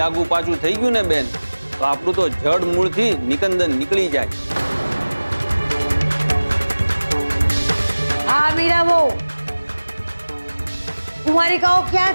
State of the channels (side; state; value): both; inverted; correlation -1.00